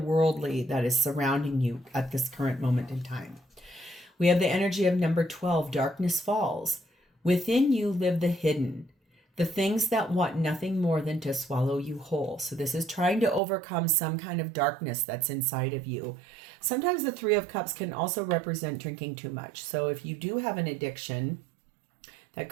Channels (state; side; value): drops out; left; at 13.4 s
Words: that is surrounding you at this current moment in time. We have the energy of number 12, darkness falls. Within you live the hidden, the things that want nothing more than to swallow you whole. So this is trying to overcome some kind of darkness that's inside of you. Sometimes the Three of Cups can also represent drinking too much. So if you do have an addiction, that